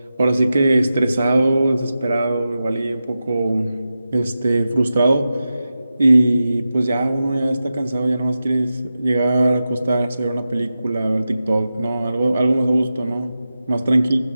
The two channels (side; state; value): both; inverted; correlation -0.92